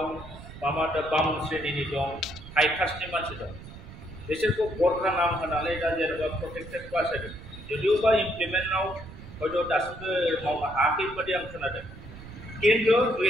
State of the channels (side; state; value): right; noise; rumble, 15 dB below the sound